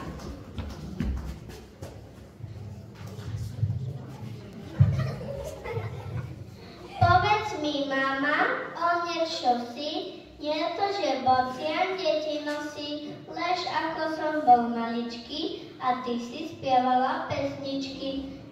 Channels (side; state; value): both; identical; correlation 1.00